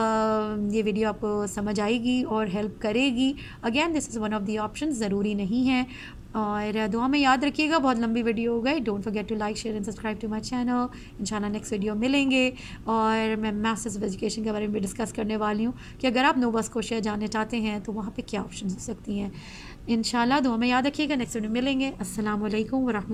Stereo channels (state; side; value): identical; both; correlation 1.00